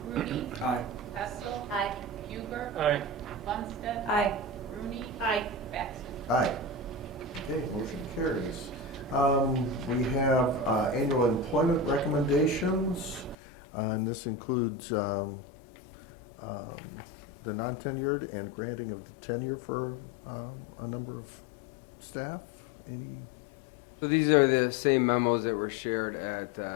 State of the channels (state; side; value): drops out; right; at 13.4 s